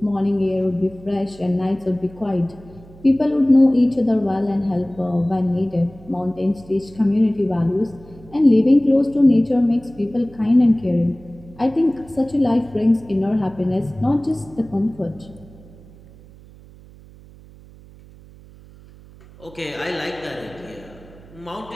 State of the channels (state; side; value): noise; right; hum, 22 dB below the sound